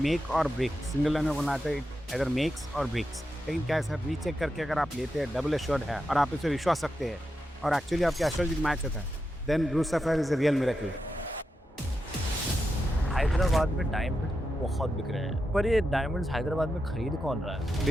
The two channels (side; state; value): both; normal; correlation 0.88